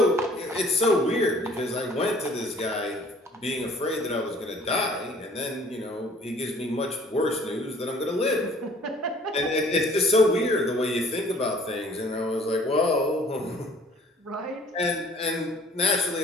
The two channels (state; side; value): normal; both; correlation 0.54